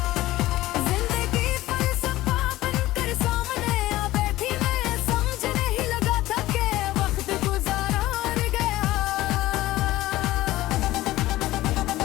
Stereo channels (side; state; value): right; quieter; 16.6 dB